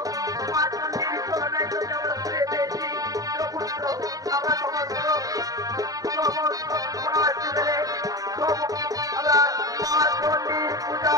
মা চণ্ডীর চরণে তো কেবল ফিরে পেয়েছি পুত্র। আমরা সমস্ত মিলে আমরা মা চণ্ডীর পূজা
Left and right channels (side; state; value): left; late; 0.18 ms